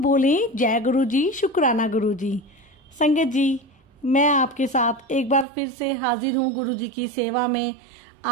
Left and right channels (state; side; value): drops out; left; at 5.5 s